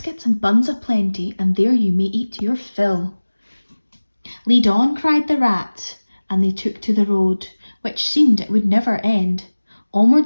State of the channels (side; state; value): both; inverted; correlation -1.00